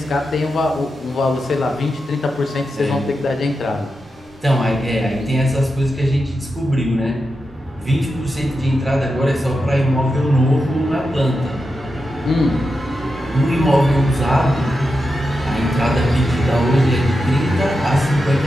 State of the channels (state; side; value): normal; both; correlation 0.88